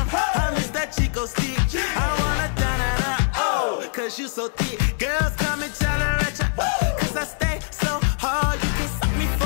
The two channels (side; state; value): right; silent; 63 dB below the other